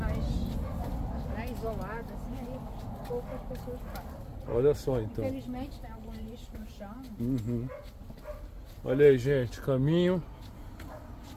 né, isolada, assim, aí poucas pessoas passam. Olha só então. Infelizmente tem algum lixo no chão. Uhum. Olha aí, gente, caminho.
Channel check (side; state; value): both; identical; correlation 1.00